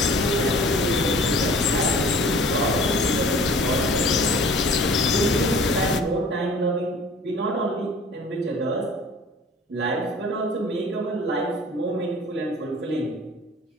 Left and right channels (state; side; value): normal; both; correlation 0.48